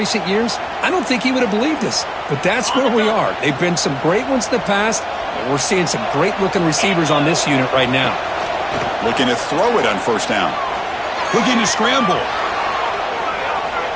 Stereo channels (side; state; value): both; identical; correlation 1.00